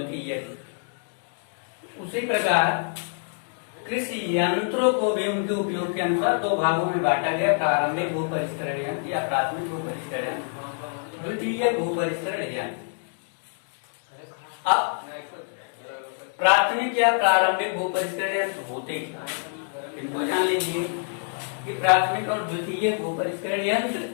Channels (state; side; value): silent; right; 61 dB below the other